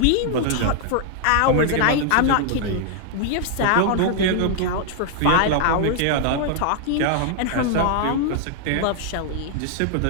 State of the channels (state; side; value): different; both; correlation -0.01